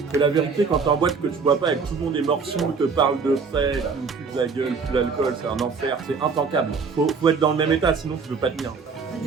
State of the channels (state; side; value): quieter; left; 5.2 dB